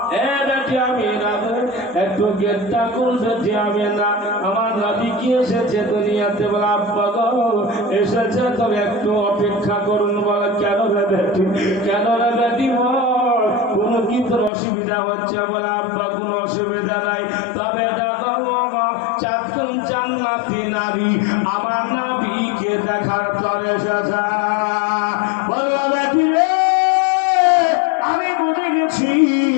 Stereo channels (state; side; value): drops out; right; at 14.5 s